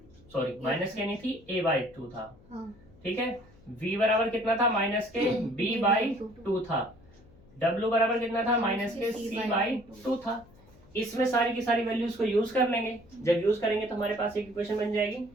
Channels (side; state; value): left; noise; hum, 25 dB below the sound